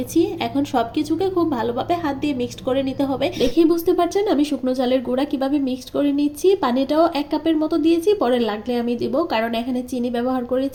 এখন সবকিছুকে খুব ভালোভাবে হাত দিয়ে মিক্সড করে নিতে হবে। দেখেই বুঝতে পারছেন আমি শুকনো চালের গুঁড়া কিভাবে মিক্সড করে নিচ্ছি। পানিটাও 1 কাপের মতো দিয়েছি, পরে লাগলে আমি দিব, কারণ এখানে চিনি ব্যবহার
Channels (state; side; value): identical; both; correlation 1.00